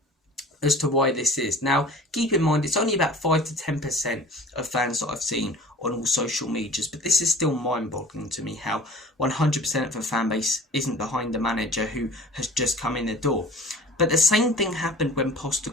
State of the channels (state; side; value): normal; both; correlation 0.44